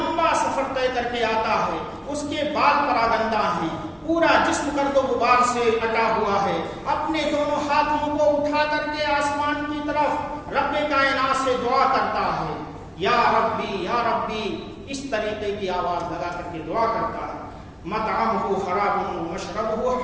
سفر طے کر کے آتا ہے، اس کے بال پراگندہ ہیں، پورا جسم گرد و غبار سے اٹا ہوا ہے، اپنے دونوں ہاتھوں کو اٹھا کر کے آسمان کی طرف رب کائنات سے دعا کرتا ہے، یا ربی یا ربی، اس طریقے کی آواز لگا کر کے دعا کرتا ہے۔ مطعمہ حرام ومشربہ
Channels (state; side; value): identical; both; correlation 1.00